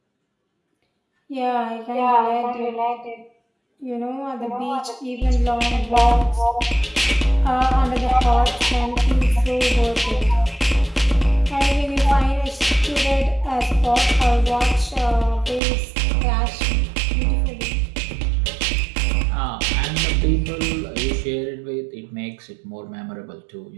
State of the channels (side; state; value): left; drops out; at 15.6 s